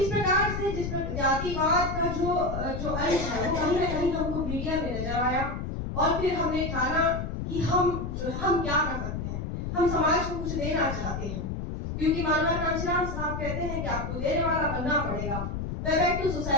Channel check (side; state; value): left; noise; rumble, 4 dB below the sound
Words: प्रकार से जिस जातिवाद का जो अंश है वो कहीं ना कहीं हमको मीडिया में नजर आया और फिर हमने ठाना कि हम क्या कर सकते हैं, हम समाज को कुछ देना चाहते हैं, क्योंकि मानव कांशीराम साहब कहते हैं कि आपको देने वाला बनना पड़ेगा, बैक टू